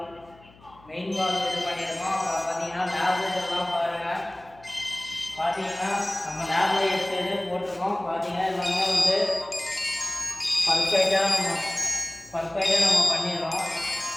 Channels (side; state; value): left; noise; hum, 26 dB below the sound